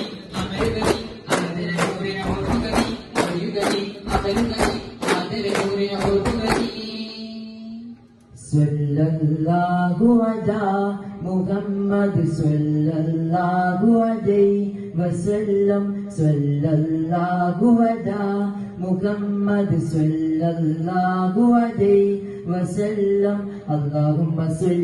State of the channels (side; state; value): both; identical; correlation 1.00